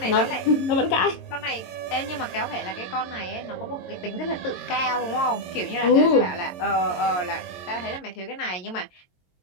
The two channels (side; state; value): right; late; 22 ms